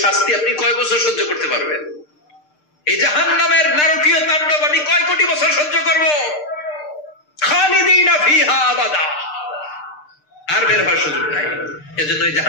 শাস্তি আপনি কয় বছর সহ্য করতে পারবেন? এই জাহান্নামের নারকীয় তাণ্ডব আমি কয় কোটি বছর সহ্য করব? খালিদিনা ফিহা আবাদা, আর বের হওয়ার সুযোগ নাই। এজন্য এই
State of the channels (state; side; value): late; right; 6.6 ms